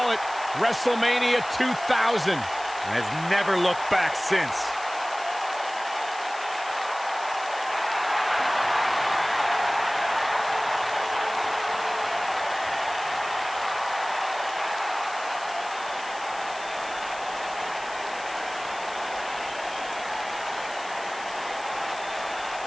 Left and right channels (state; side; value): noise; left; hiss, 17 dB below the sound